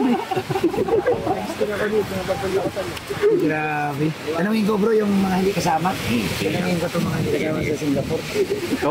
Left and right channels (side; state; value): both; identical; correlation 1.00